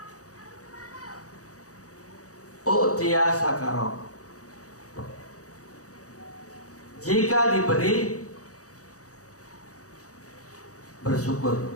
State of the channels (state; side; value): late; right; 0.66 ms